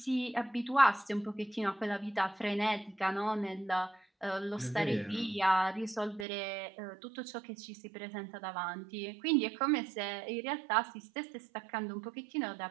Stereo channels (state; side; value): drops out; left; at 6.2 s